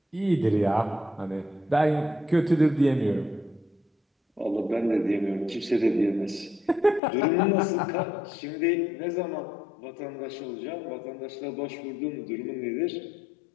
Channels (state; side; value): drops out; right; at 7.0 s